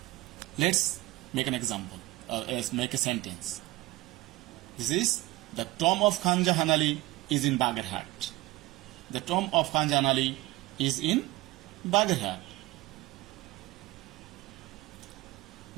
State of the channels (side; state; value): left; quieter; 19.5 dB